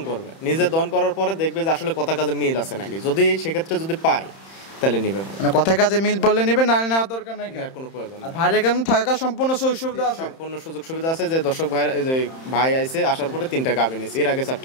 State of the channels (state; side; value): late; right; 31 ms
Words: করবে, নিজে দন করার পরে দেখবে যে আসলে কথা কাজে মিল আছে নাকি, যদি সেক্ষেত্রে যদি পায় তাহলে নিবে, মানে কথায় কাজে মিল পড়লে নেবে, নালে নেওয়ার দরকার নাই। আর কোনো প্রয়োজন নেই। আর ভাইয়ের এখানে থাকা সম্পূর্ণ সুযোগ সুবিধা আছে। সম্পূর্ণ সুযোগ সুবিধা আছে। যে দর্শক ভাই, এই যে ভাই আইছে আসার পরে 3টা গাভী নিছে, এর আগে